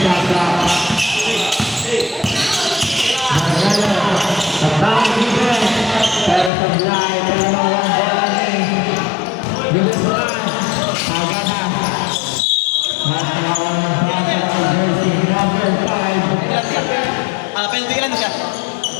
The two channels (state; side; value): drops out; right; at 6.5 s